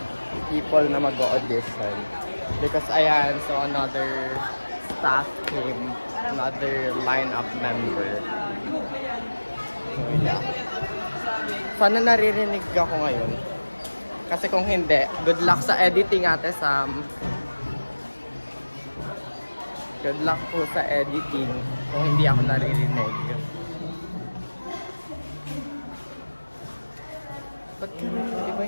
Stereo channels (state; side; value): inverted; both; correlation -1.00